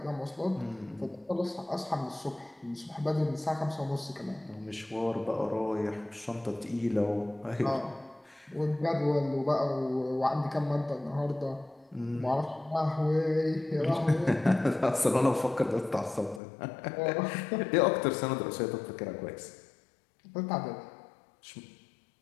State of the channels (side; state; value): right; drops out; at 16.4 s